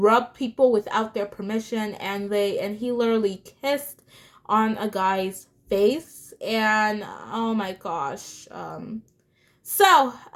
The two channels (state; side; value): identical; both; correlation 1.00